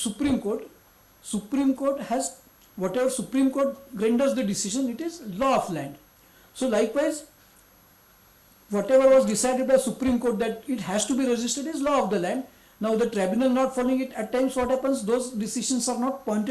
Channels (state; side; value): identical; both; correlation 1.00